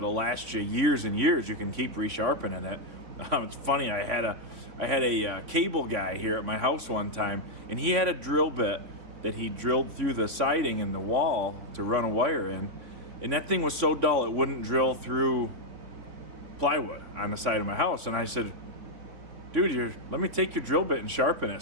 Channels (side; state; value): left; late; 3.5 ms